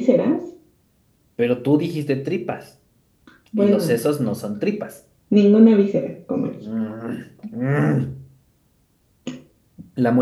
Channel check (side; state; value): both; identical; correlation 1.00